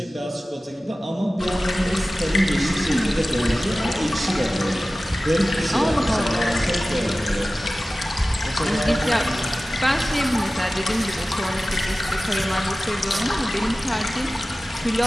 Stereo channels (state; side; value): normal; both; correlation 0.96